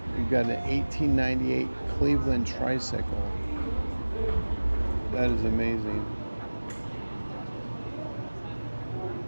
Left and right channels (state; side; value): inverted; both; correlation -1.00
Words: we've got an 1898 Cleveland tricycle. That is amazing.